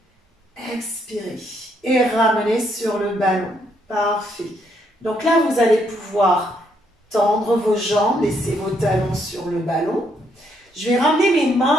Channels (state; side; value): normal; both; correlation 0.73